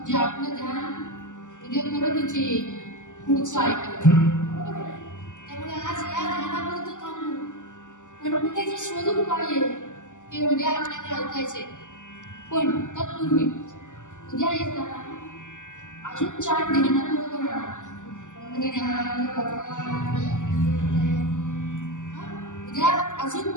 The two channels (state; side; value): late; right; 0.86 ms